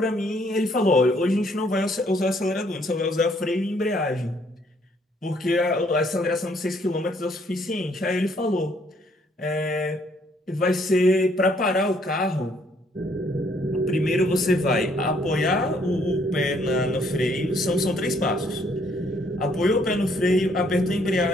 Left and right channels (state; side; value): normal; both; correlation 0.66